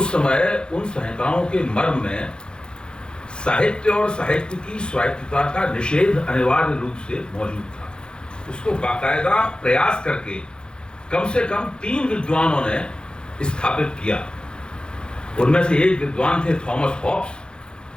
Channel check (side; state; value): right; late; 0.049 ms